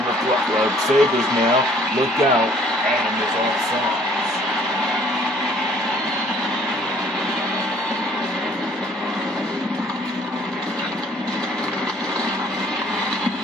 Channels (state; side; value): normal; both; correlation 0.58